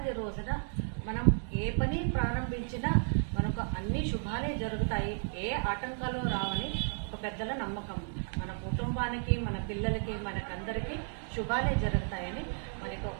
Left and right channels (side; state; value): left; silent; 56 dB below the other